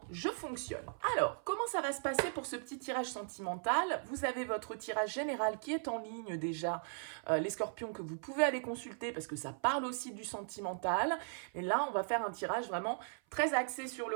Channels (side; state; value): left; silent; 53 dB below the other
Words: je fonctionne. Alors, comment ça va se passer pour ce petit tirage sentimental? Vous avez votre tirage général qui est en ligne déjà, les scorpions, que vous pouvez aller consulter parce que ça parle aussi du sentimental. Et là, on va faire un tirage vraiment très axé sur